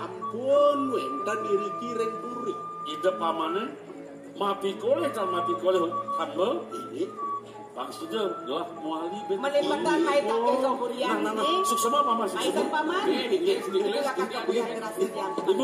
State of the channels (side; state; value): both; identical; correlation 1.00